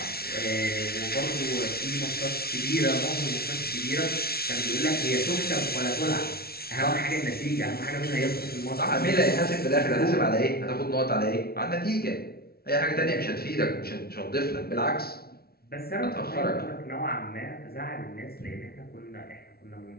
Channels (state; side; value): late; right; 0.44 ms